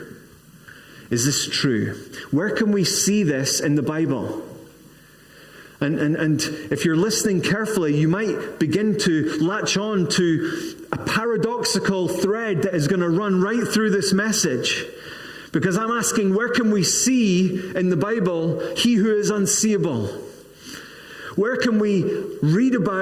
Is this true? Where can we see this in the Bible? And if you're listening carefully, you might begin to latch on to a paradoxical thread that is going to run right through this message. Because I'm asking, where can we see in the Bible he who is unseeable? Where can we read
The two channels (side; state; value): both; identical; correlation 1.00